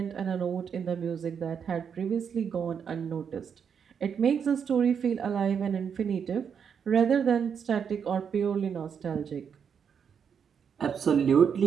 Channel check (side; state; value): left; quieter; 7.2 dB